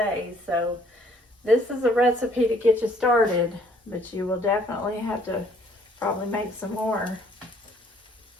So this is a recipe to get you started, but you will definitely have to probably make some more.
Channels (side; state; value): both; normal; correlation 0.61